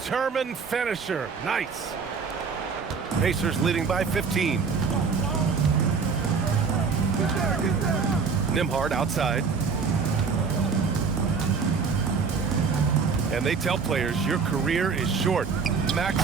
finisher. Nice. Pacers leading by 15. Nembhard outside. And they tell players your career is short.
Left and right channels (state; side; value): quieter; left; 5.3 dB